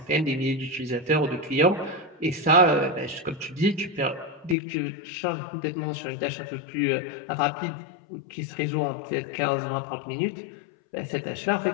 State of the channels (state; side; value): drops out; right; at 4.5 s